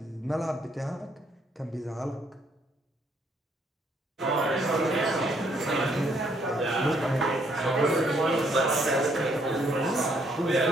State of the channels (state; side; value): normal; both; correlation 0.69